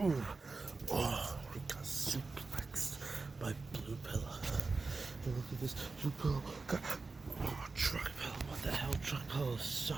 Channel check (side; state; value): left; quieter; 4.0 dB